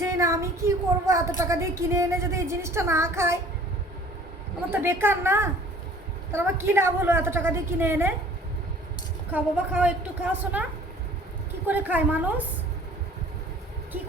না, আমি কি করবো? এত টাকা দিয়ে কিনে এনে যদি এই জিনিসটা না খাই, আমার তো বেকার না? তাহলে আমার কী লাভ হলো এত টাকা দিয়ে কিনে এনে? খাও বাবা খাও, একটু খাও শোনা। কি করে খায় মানুষ? কি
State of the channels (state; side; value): normal; both; correlation 0.50